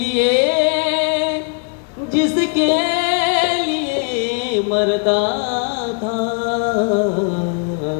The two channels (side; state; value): right; quieter; 39.1 dB